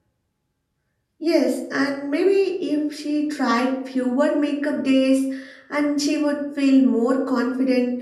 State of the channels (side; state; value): both; identical; correlation 1.00